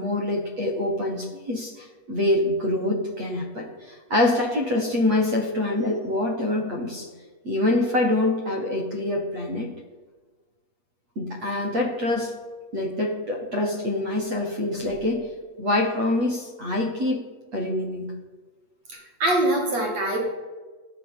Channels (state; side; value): late; left; 8.3 ms